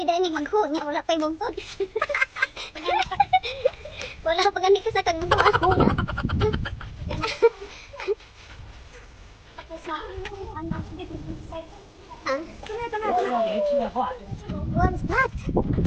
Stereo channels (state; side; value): identical; both; correlation 1.00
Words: dahil magho niya, wala pa'y bungtod. Wala pa gani ka sa kagbungtod. Ako na. What's that?